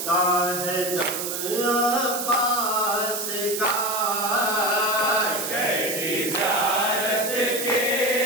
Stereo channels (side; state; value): right; noise; hiss, 4 dB below the sound